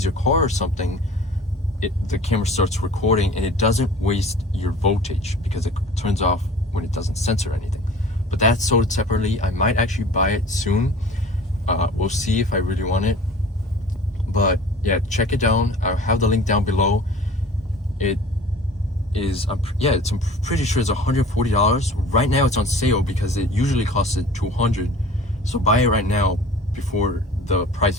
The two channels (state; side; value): normal; both; correlation 0.44